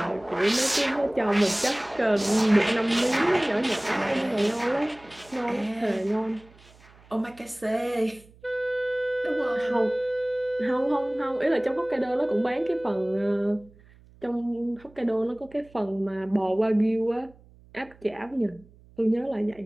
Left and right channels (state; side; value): noise; right; hum, 26 dB below the sound